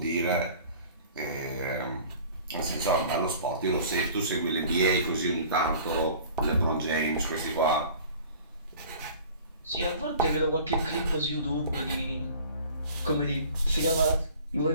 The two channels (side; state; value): both; inverted; correlation -0.46